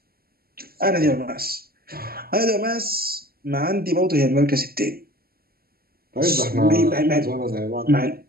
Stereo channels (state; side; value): late; left; 0.44 ms